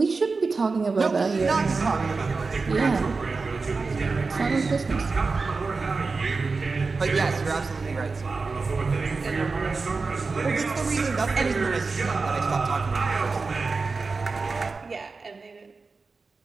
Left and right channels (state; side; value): quieter; left; 4.2 dB